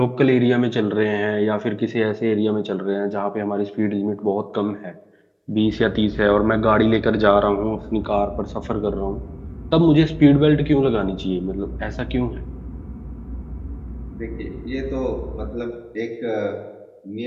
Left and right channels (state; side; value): identical; both; correlation 1.00